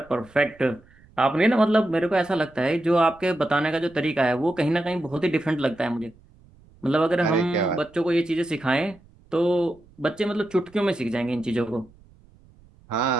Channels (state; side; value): noise; right; rumble, 28 dB below the sound